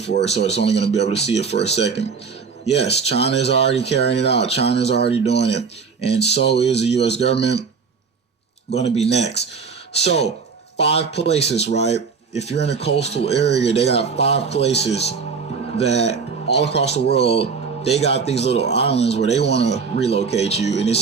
it. So it's only going to be able to see it for a second. Yes, China is already carrying it out. China is already doing it. And so is the U.S. government going to be next. So 5 places, right? If you're in a coastal area, they got 5 places that all across the world, they got these little islands where they want to relocate you. And it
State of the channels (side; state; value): left; quieter; 5.5 dB